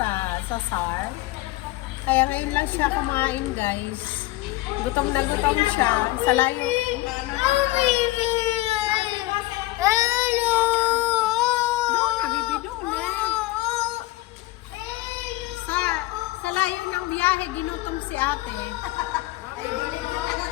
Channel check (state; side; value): quieter; right; 18.5 dB